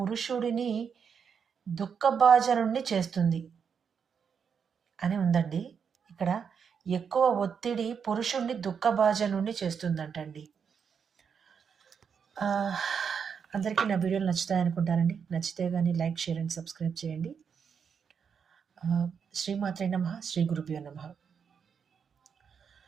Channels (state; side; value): quieter; left; 6.7 dB